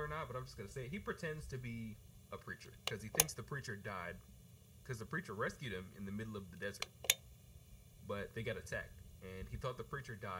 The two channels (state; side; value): identical; both; correlation 1.00